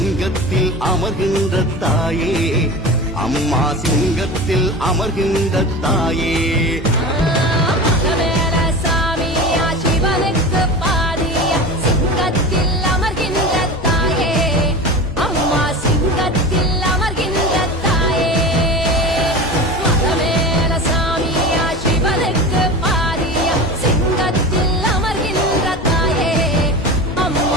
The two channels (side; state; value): both; normal; correlation 0.31